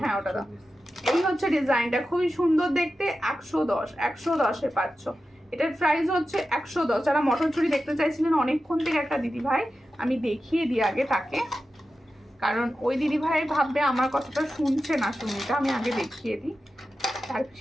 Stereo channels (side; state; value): both; normal; correlation 0.92